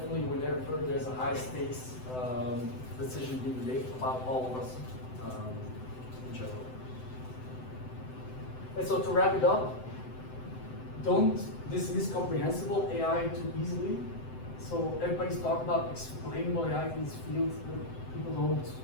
whenever there's a high stakes decision being made about all of us in general. And so to wrap it up, don't dismiss comprehensible AI too easily. So everybody's talking about explainable AI in this field. People don't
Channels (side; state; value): right; late; 7.8 ms